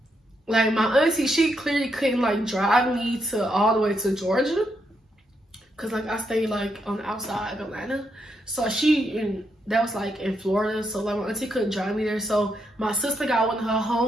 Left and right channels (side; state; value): both; normal; correlation 0.80